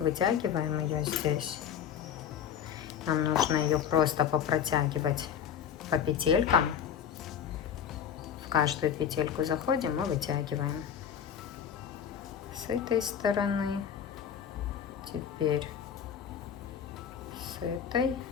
ее здесь. Нам нужно ее просто попротягивать по петелькам. В каждую петельку заходим и вытягиваем. С этой стороны. Теперь с этой.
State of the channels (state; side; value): quieter; right; 8.5 dB